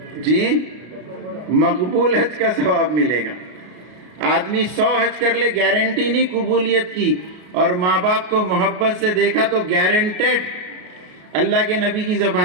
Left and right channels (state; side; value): late; left; 33 ms